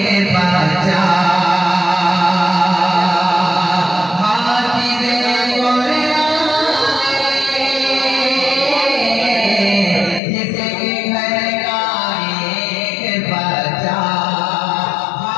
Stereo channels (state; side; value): drops out; right; at 10.2 s